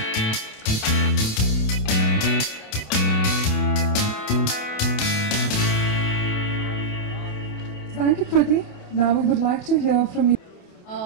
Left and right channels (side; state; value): right; late; 28 ms